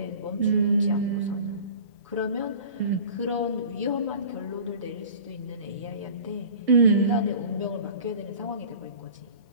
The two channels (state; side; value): inverted; both; correlation -0.41